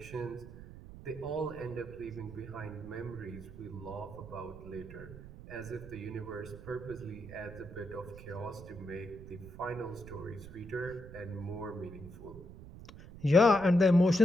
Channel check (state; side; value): noise; right; rumble, 14 dB below the sound